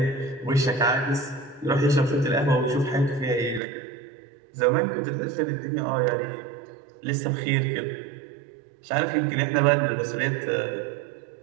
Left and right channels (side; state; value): left; drops out; at 3.6 s